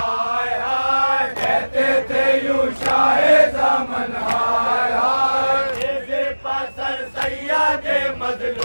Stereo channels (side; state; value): both; inverted; correlation -1.00